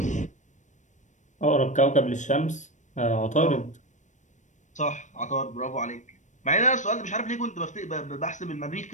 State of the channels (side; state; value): right; late; 0.35 ms